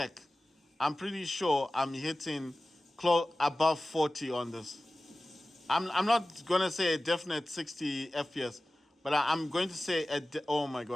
I'm pretty sure I'm hitting close above 40 on this. I'm not gonna say a definite 60 FPS, but I'm going to say oh my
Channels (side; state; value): both; normal; correlation 0.97